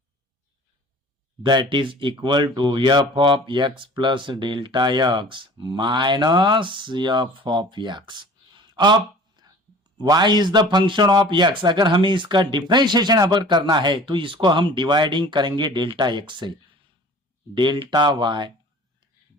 that is equal to f of x plus delta x minus f of x. अब y is the function of x, अगर हमें इसका डिफरेंशिएशन अगर करना है तो इसको हम डिवाइडिंग करेंगे डेल्टा x से, delta y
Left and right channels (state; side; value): normal; both; correlation 0.46